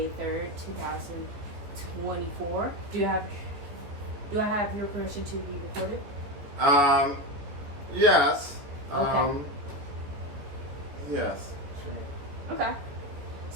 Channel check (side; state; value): left; late; 14 ms